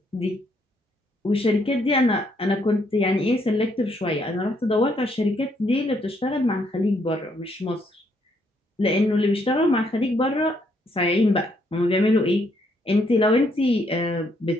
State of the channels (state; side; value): normal; both; correlation 0.72